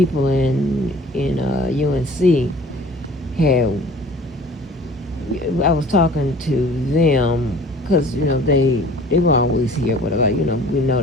in UNC had. I was talking to them because they were always here. Whatever, we know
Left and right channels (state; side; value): normal; both; correlation 0.47